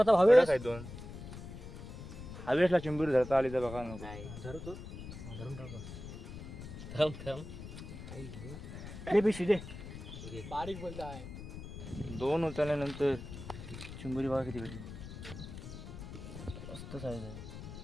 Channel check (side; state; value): left; noise; rumble, 11 dB below the sound